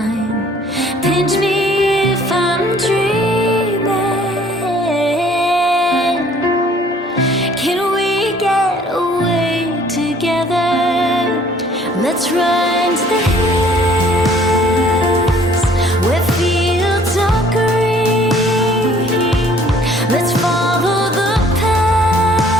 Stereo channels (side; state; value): both; normal; correlation 0.57